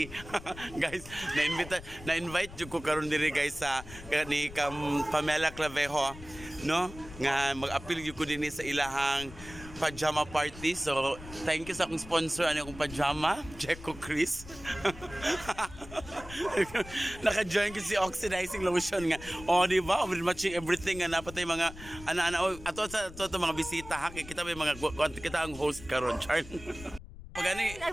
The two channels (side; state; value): left; noise; rumble, 15 dB below the sound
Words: Guys, na-invite ko karon diri guys sa ni Pamela Clavejo, no? Nga mag-appeal ko din sa ilahang Pajama Party. So, thank you sa akong sponsor. Ano akong pajama? Checo Chris. Naka-join ko si oxidizing lotion nga. O, di ba? We're matching everything nga. Napatay mga ana-ana. Ato sa mga bisita ha. Kita may mga kita ang host karon, Char. Pagani.